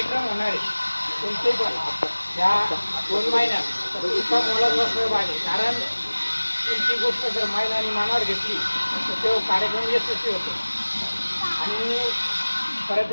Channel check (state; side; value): inverted; both; correlation -1.00